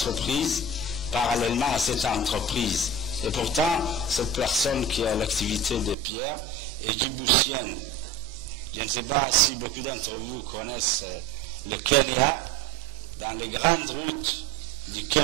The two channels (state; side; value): drops out; left; at 6.0 s